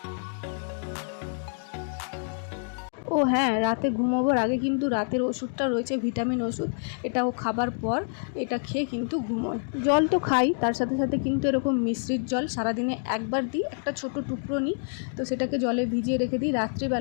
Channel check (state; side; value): silent; right; digital silence